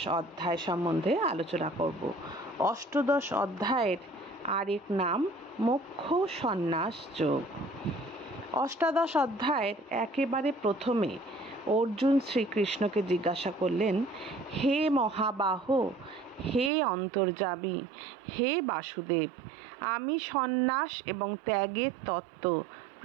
অধ্যায় সম্বন্ধে আলোচনা করব। অষ্টাদশ অধ্যায়ের আরেক নাম মোক্ষ সন্ন্যাস যোগ। অষ্টাদশ অধ্যায়ের একেবারে প্রথমে অর্জুন শ্রীকৃষ্ণকে জিজ্ঞাসা করলেন, হে মহাবাহ, হে অন্তর্যামী, হে বাসুদেব, আমি সন্ন্যাস এবং ত্যাগের তত্ত্ব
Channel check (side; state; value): left; drops out; at 16.7 s